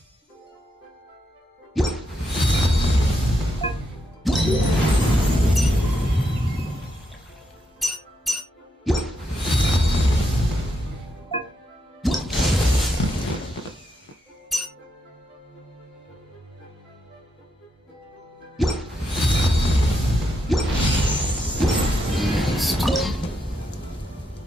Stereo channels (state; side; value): normal; both; correlation 0.81